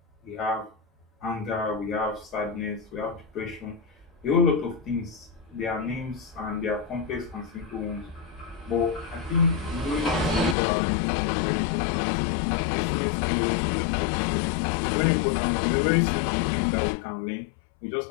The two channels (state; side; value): drops out; right; at 10.6 s